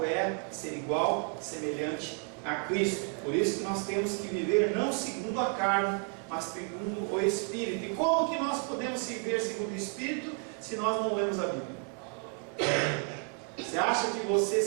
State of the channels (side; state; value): left; quieter; 37.8 dB